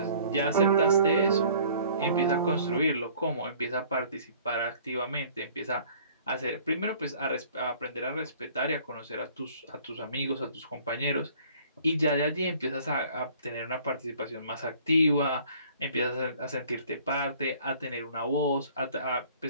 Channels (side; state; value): both; inverted; correlation -0.54